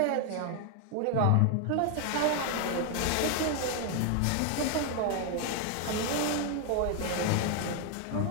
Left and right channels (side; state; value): both; different; correlation 0.00